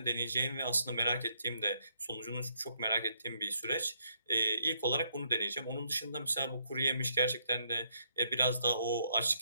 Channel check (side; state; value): both; inverted; correlation -0.73